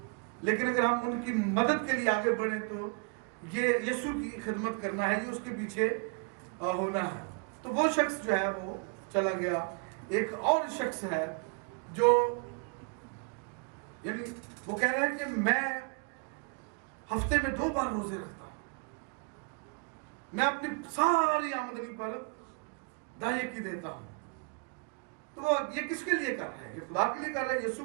लेकिन अगर हम उनकी मदद के लिए आगे बढ़े तो ये यीशु की खिदमत करना है, ये उसके पीछे होना है। तो वो शख्स जो है वो चला गया। एक और शख्स है जो यानी वो कह रहा है कि मैं हफ्ते में 2 बार रोजे रखता हूं, मैं अपनी सारी आमदनी पर दाये की देता हूं। तो वो ये किसके लिए कर रहा है? ये खुदा के लिए कर रहा है,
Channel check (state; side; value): quieter; left; 37.5 dB